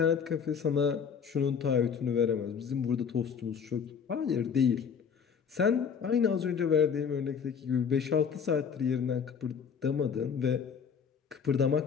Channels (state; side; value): quieter; right; 6.7 dB